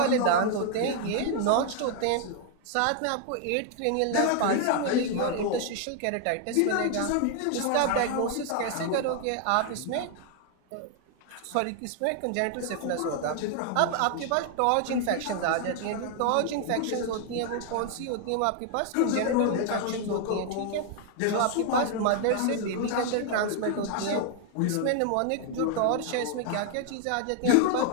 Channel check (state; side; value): different; both; correlation 0.00